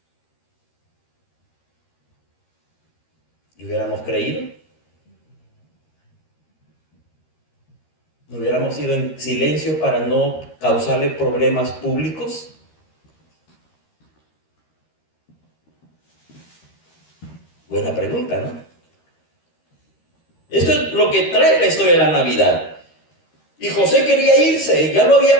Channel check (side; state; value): right; late; 13 ms